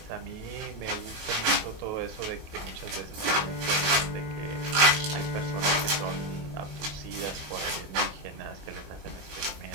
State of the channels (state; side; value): late; left; 19 ms